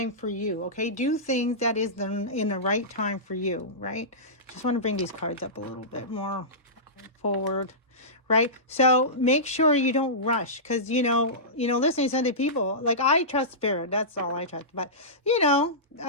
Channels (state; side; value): normal; both; correlation -0.19